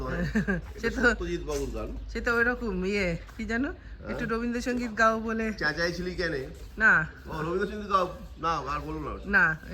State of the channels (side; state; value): both; identical; correlation 1.00